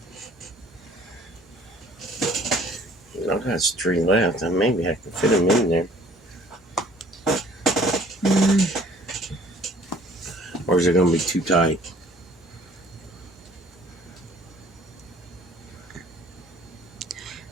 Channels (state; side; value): normal; both; correlation 0.54